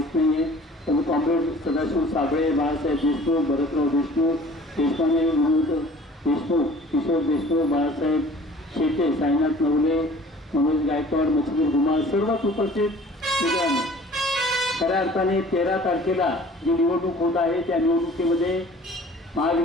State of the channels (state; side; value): normal; both; correlation 0.49